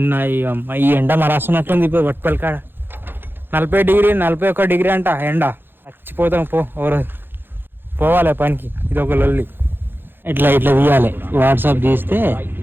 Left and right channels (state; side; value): late; left; 0.10 ms